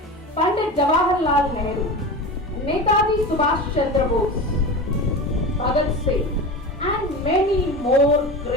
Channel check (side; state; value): both; normal; correlation 0.28